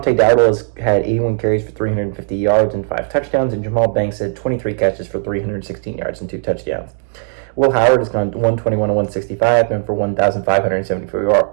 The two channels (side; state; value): left; silent; digital silence